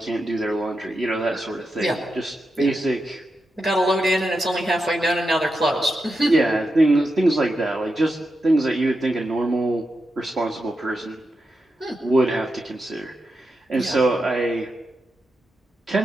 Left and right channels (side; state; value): both; normal; correlation 0.88